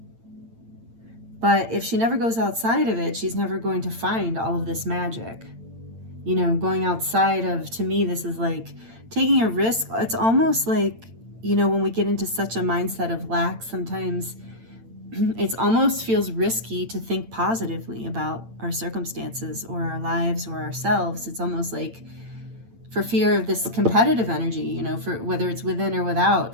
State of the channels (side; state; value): left; late; 8.8 ms